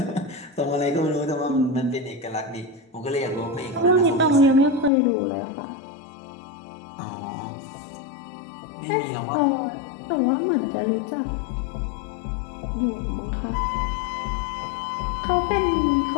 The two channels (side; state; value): right; drops out; at 4.9 s